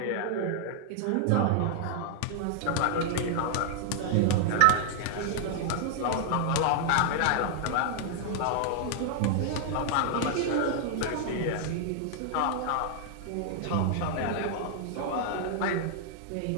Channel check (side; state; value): both; different; correlation -0.01